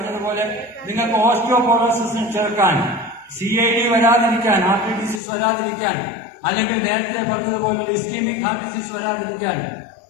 നിങ്ങൾക്ക് ഓസ്റ്റിയോപോറോസിസിന് ചേർക്കാൻ, CID വരാതിരിക്കാൻ, ഹാർട്ട് ഡിസീസ് വരാതിരിക്കാൻ, അല്ലെങ്കിൽ നേരത്തെ പറഞ്ഞതുപോലെ ഇസ്കീമിക് ഹാർട്ട് ഡിസീസ് വരാതിരിക്കാൻ,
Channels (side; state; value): right; drops out; at 5.2 s